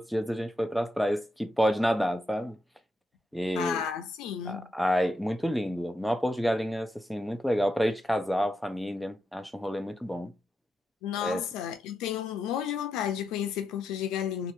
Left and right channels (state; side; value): normal; both; correlation 0.84